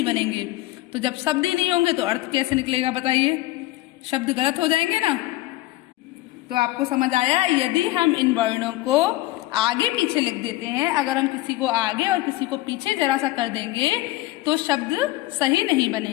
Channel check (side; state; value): right; quieter; 17.8 dB